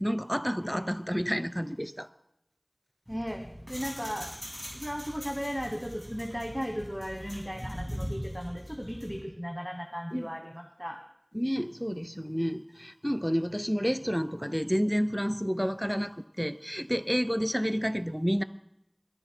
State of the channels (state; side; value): identical; both; correlation 1.00